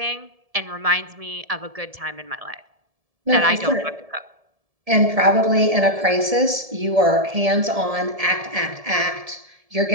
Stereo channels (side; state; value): left; late; 1.7 ms